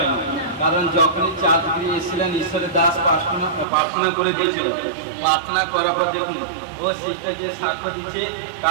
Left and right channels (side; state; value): left; drops out; at 3.7 s